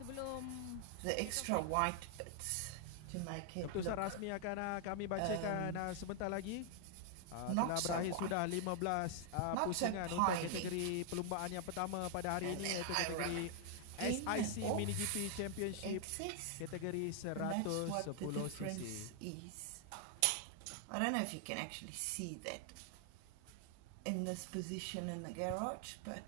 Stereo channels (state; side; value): different; both; correlation 0.00